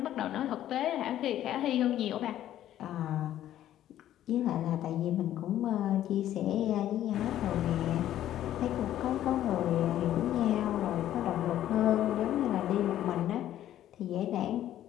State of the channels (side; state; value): right; quieter; 12.3 dB